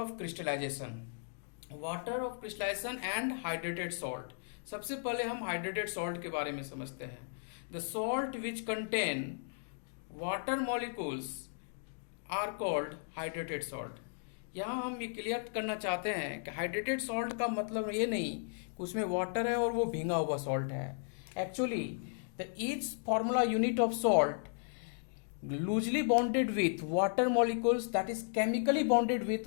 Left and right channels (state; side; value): silent; right; digital silence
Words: crystallization. Water of crystallization and hydrated salt. सबसे पहले हम हाइड्रेटेड सॉल्ट के बारे में समझते हैं। The salt which contain water molecules are called hydrated salt. यहाँ हम ये क्लियर करना चाहते हैं कि हाइड्रेटेड सॉल्ट का मतलब ये नहीं कि उसमें वाटर है और वो भींगा हुआ सॉल्ट है। Actually the each formula unit of salt loosely bonded with water molecules, that is chemically bonded with